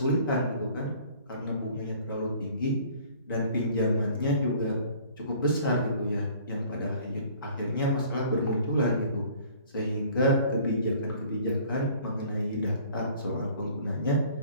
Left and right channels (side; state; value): both; inverted; correlation -0.53